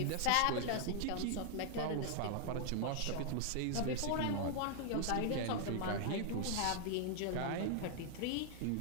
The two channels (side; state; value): both; different; correlation 0.00